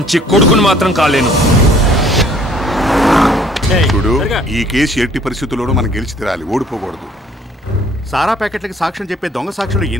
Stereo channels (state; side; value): normal; both; correlation 0.57